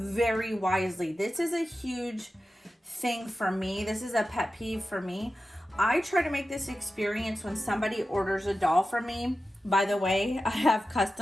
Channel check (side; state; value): both; normal; correlation 0.93